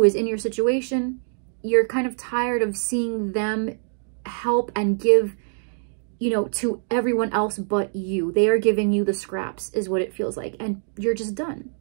is in your situation, you're kind of tired of seeing them help and give, you know, to everyone else but you. They are giving you the scraps is what it feels like. And you're just done.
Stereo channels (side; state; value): left; silent; digital silence